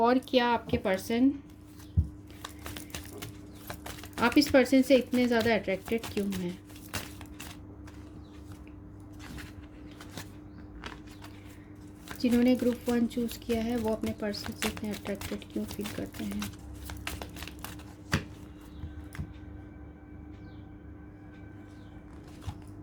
क्या आपके पर्सन, आप इस पर्सन से इतने ज़्यादा अट्रैक्टेड क्यों हैं। जिन्होंने ग्रुप 1 चूज़ किया है वो अपने पर्सन से इतने अट्रैक्टेड क्यों फील करते हैं।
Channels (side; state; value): both; identical; correlation 1.00